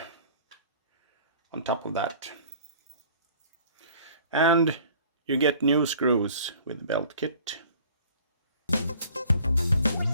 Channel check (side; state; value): both; inverted; correlation -0.51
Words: on top of that. And you get new screws with the belt kit.